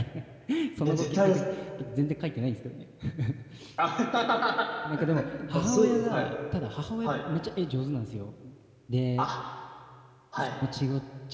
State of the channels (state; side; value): identical; both; correlation 1.00